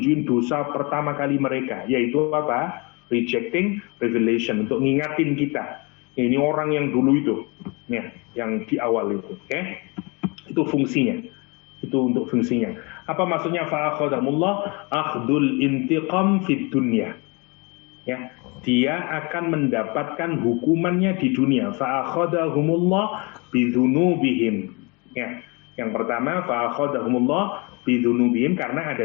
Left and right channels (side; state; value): right; quieter; 29.1 dB